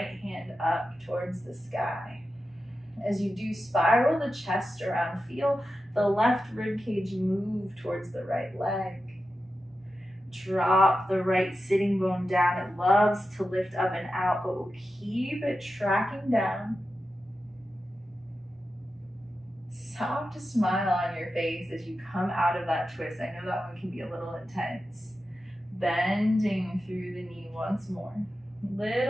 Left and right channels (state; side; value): normal; both; correlation 0.91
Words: hand up towards the sky. As you do, spiral the chest around. Feel the left rib cage move towards the right leg. Drop the right sitting bone down. It loves to lift up and out, but we'll keep it tracking down. Soft smile on your face as you come out of that twist. I know that one can be a little intense. Bending through the knee once more.